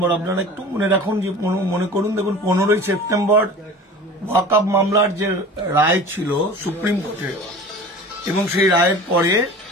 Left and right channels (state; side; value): normal; both; correlation 0.39